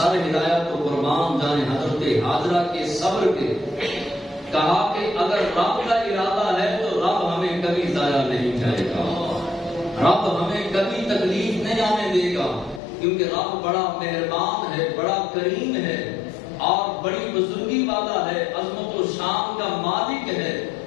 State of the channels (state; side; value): drops out; right; at 12.8 s